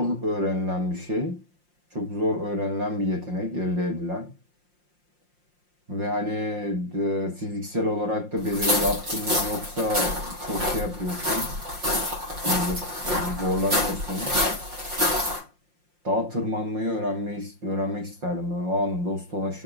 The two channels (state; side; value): late; left; 5.7 ms